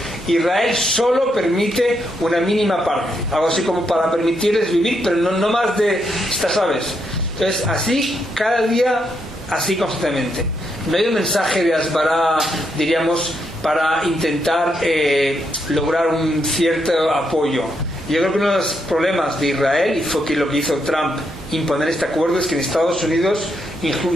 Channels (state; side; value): normal; both; correlation 0.79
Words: Israel solo permite una mínima parte. Algo así como para permitirles vivir, pero no más de estas aves. Entonces, así, cada día, así constantemente. No hay un mensaje de Asbará, diríamos, para intentar lograr un cierto apoyo. Yo creo que uno de los problemas de Israel, y fue que lo que hizo Trump, imponer este acuerdo, es que en Estados Unidos,